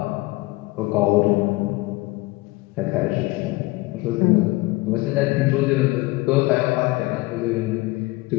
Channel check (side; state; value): right; quieter; 21.9 dB